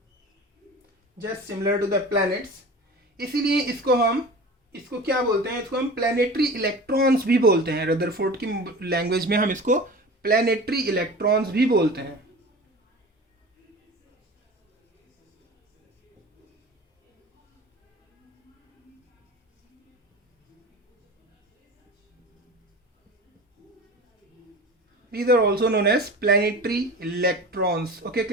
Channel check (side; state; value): both; normal; correlation 0.36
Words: just similar to the planets, इसीलिए इसको क्या बोलते हैं, इसको हम प्लैनेटरी इलेक्ट्रॉन्स भी बोलते हैं। रदरफोर्ड की लैंग्वेज में हम इसको प्लैनेटरी इलेक्ट्रॉन्स भी बोलते हैं। These are also known as planetary electrons. Okay